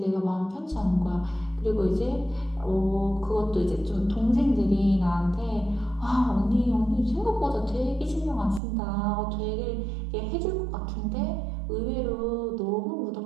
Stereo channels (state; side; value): drops out; left; at 8.6 s